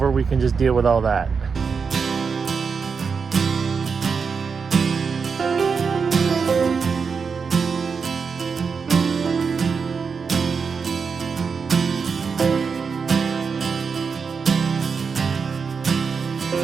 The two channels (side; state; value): left; quieter; 5.6 dB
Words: we can just deal with all that.